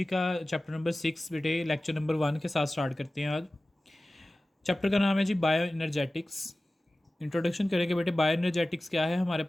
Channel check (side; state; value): both; normal; correlation 0.96